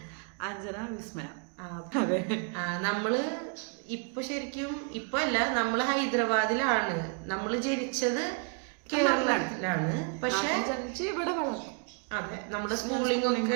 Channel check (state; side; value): quieter; left; 38.6 dB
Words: Anjana Vismaya. അതെ, നമ്മള് ഇപ്പൊ ശരിക്കും ഇപ്പൊ അല്ല, നമ്മള് ഹൈദരാബാദിലാണ്. നമ്മള് ജനിച്ചത് കേരളത്തിലാണ്, പക്ഷെ ഇവിടെ വളർന്നു. അതെ, നമ്മുടെ സ്കൂളിംഗ്